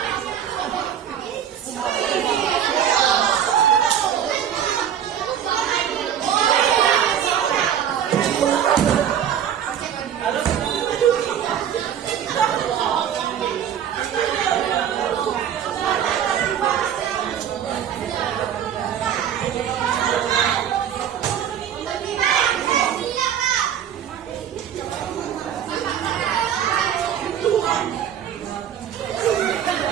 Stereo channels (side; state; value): left; quieter; 9.4 dB